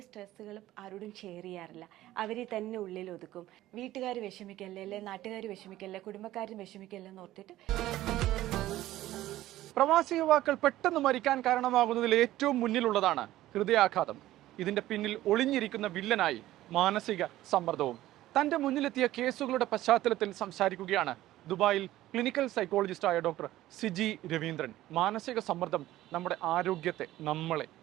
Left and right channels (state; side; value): quieter; left; 15.0 dB